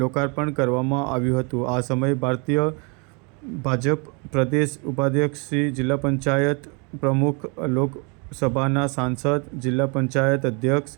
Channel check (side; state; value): left; quieter; 32.9 dB